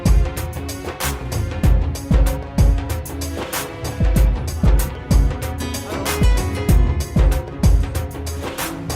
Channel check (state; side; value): identical; both; correlation 1.00